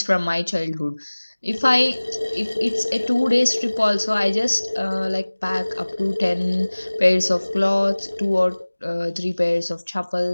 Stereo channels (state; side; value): inverted; both; correlation -1.00